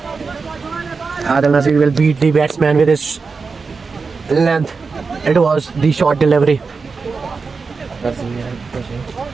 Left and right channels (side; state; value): left; quieter; 4.7 dB